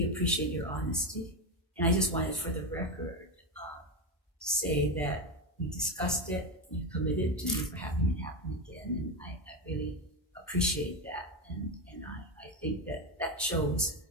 appreciate your honesty, and I just wanted for the record to say that we discussed it, you committed to never having it happen again, and I really appreciate that, and I think that shows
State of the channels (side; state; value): both; normal; correlation 0.14